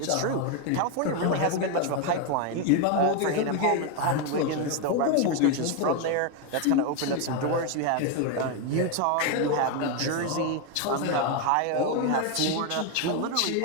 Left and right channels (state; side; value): different; both; correlation 0.01